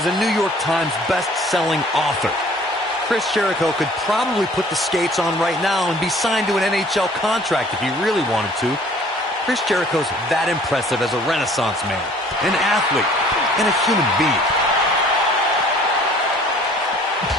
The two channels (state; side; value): normal; both; correlation 0.53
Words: a New York Times best-selling author. Chris Jericho could probably put the skates on right now and be signed to an NHL contract if he really wanted to. Chris Jericho's that impressive as a Renaissance man, an athlete, and a human being.